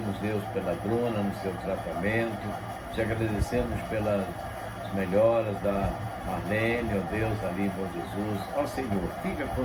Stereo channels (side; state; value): both; identical; correlation 1.00